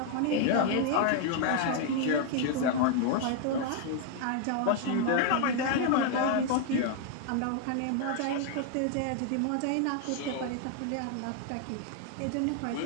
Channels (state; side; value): different; both; correlation 0.00